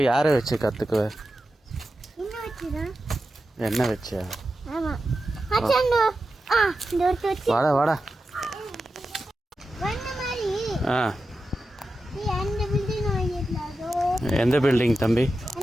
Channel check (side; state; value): both; normal; correlation 0.91